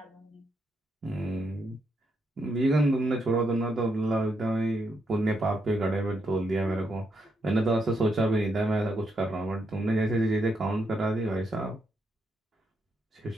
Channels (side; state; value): both; normal; correlation 0.79